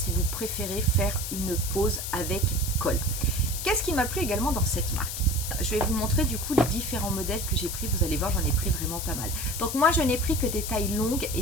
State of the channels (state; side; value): noise; left; hiss, 5 dB below the sound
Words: vous préférez faire une pose avec colle. Qu'est-ce qui m'a plu également dans cette marque? Je vais vous montrer du coup les différents modèles que j'ai pris. Vous allez voir, j'en ai pris vraiment pas mal. Donc moi, je n'ai pris que des tailles longues et